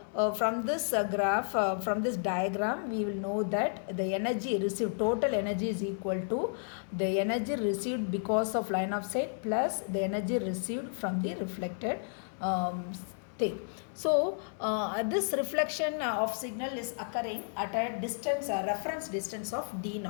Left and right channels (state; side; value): silent; right; digital silence